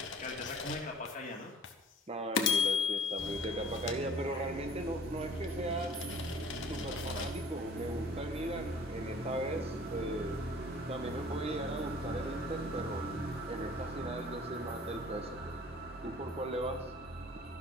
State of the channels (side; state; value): both; normal; correlation 0.49